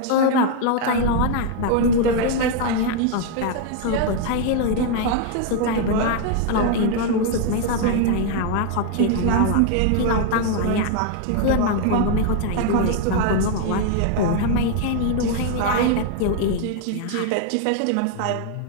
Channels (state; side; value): different; both; correlation 0.00